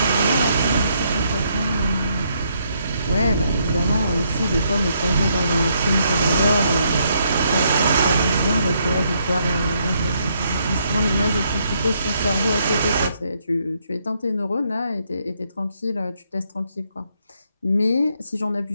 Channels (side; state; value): both; inverted; correlation -0.73